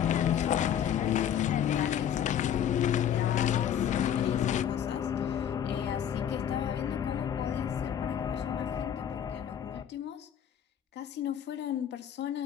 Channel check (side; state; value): right; quieter; 9.5 dB